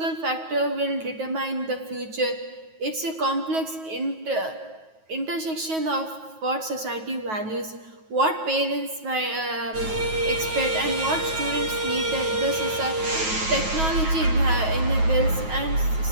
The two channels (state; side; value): late; left; 9.3 ms